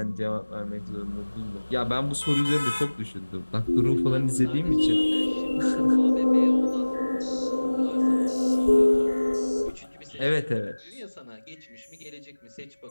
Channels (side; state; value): both; inverted; correlation -1.00